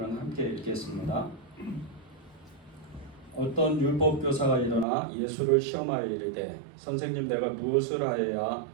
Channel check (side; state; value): left; drops out; at 4.9 s